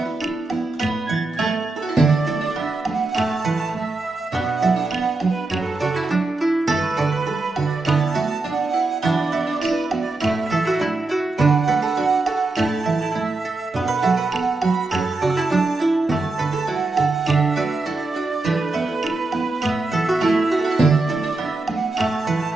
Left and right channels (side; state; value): left; quieter; 3.2 dB